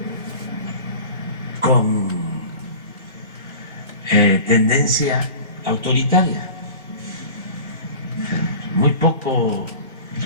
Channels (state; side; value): inverted; both; correlation -0.38